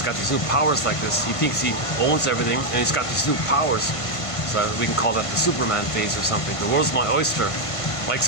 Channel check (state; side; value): late; right; 1.5 ms